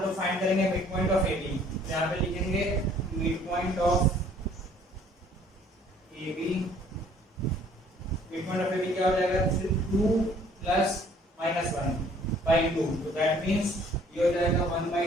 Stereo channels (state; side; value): normal; both; correlation 0.58